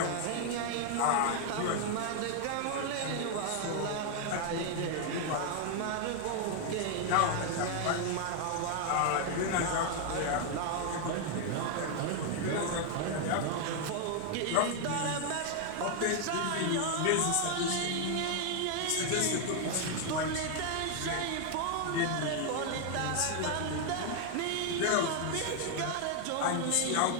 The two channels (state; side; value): different; both; correlation 0.00